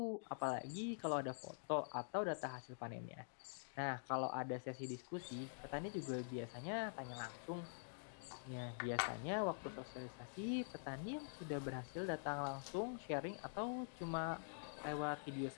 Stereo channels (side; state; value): right; silent; digital silence